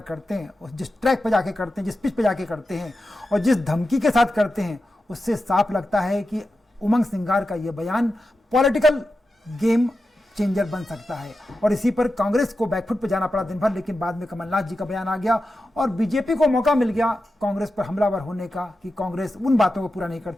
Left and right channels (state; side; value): normal; both; correlation 0.91